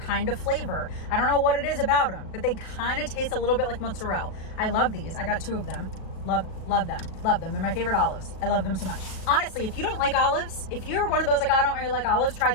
of flavor. I don't know what it is about them, but they kind of taste a little bit like mozzarella. I love these. I got 2 of them. Love them. They're my favorite olives. I love them so much. Honestly, if you don't like olives, if you're one of those like, I don't really like olives, try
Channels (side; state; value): right; late; 37 ms